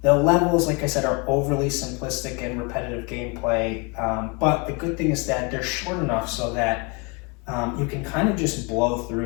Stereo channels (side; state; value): right; quieter; 29.9 dB